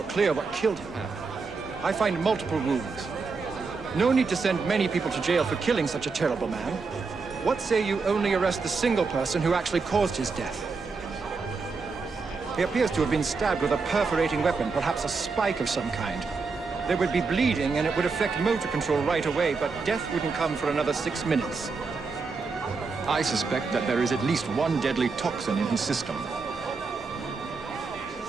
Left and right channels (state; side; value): quieter; left; 4.5 dB